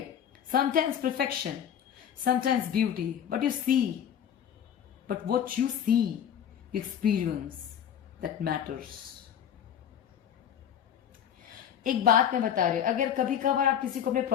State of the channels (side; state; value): right; quieter; 9.2 dB